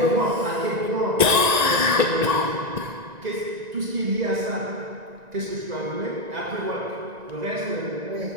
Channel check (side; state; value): left; late; 1.9 ms